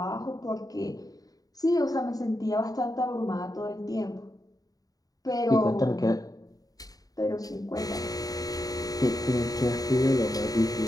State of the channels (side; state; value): right; late; 0.18 ms